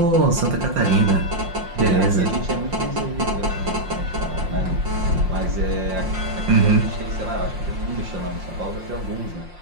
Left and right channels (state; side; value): late; left; 5.7 ms